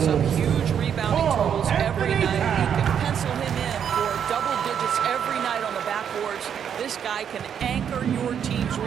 up huge rebounding totals every night. You can pencil him in for double digits every night on the backboards. This guy can anchor your team's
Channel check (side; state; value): left; quieter; 8.3 dB